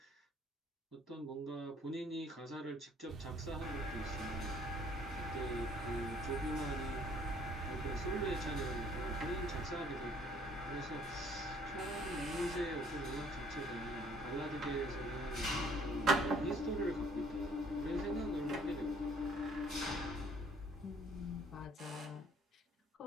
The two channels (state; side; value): normal; both; correlation 0.60